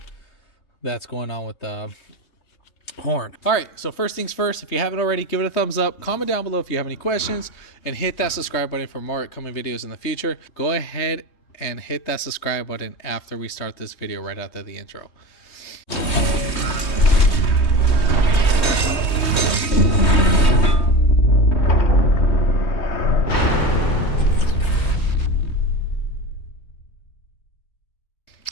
that's going on with the horn. All right, so first things first, if you haven't already, give it a thumbs up, comment down below if you have any questions, and hit that subscribe button for more upcoming videos in the future. Go ahead and hit that subscribe button after we start this video, right after the intro.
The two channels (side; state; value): right; late; 3.2 ms